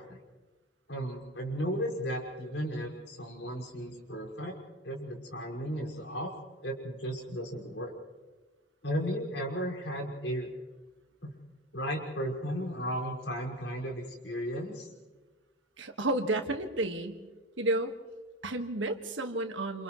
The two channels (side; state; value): both; normal; correlation 0.27